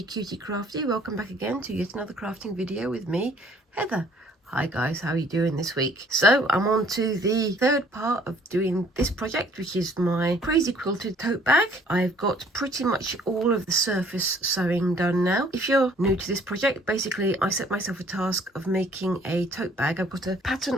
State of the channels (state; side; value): normal; both; correlation 0.58